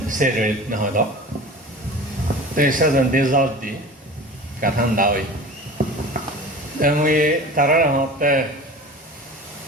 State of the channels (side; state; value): both; normal; correlation 0.36